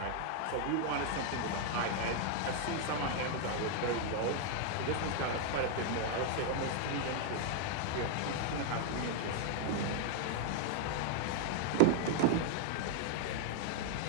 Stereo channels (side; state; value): both; different; correlation 0.00